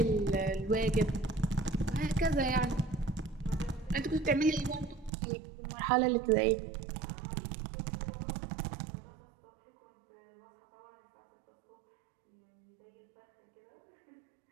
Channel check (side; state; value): left; drops out; at 5.1 s